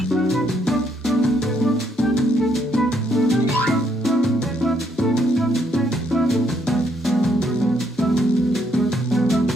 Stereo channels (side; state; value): both; normal; correlation 0.72